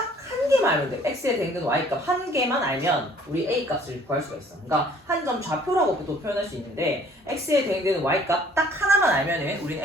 한 개만 알면 돼. X에 대응되는 Y값 한 개만 알면 우리 A값을 구할 수가 있어. 그러니까 한 점 좌표라고 또 표현할 수 있는데 X에 대응되는 Y값 딱 하나만 알면은 우리는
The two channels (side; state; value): both; normal; correlation 0.57